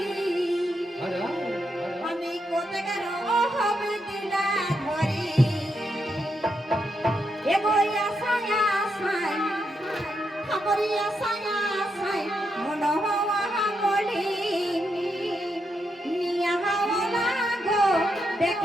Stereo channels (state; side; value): normal; both; correlation 0.82